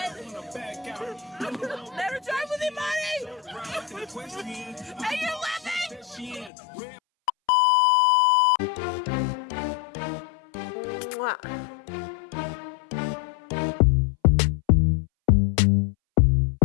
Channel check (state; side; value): drops out; right; at 6.5 s